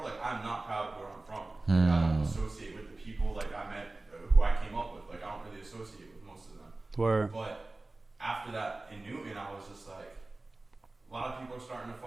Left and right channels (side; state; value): left; quieter; 3.0 dB